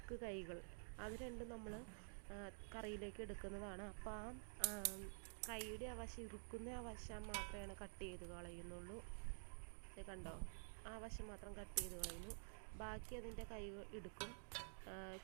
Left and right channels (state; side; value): silent; left; digital silence